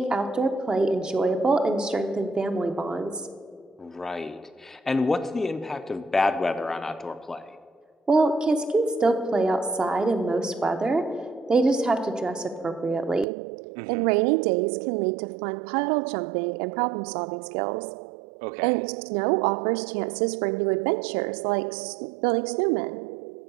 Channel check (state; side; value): drops out; left; at 13.2 s